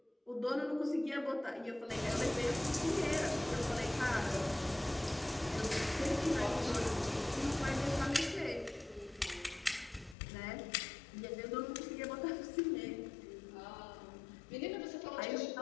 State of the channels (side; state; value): right; drops out; at 10.2 s